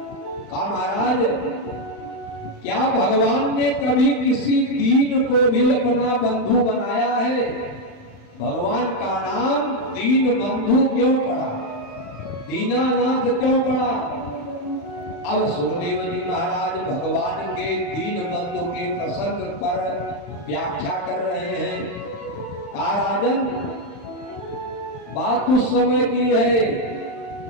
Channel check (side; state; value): right; late; 35 ms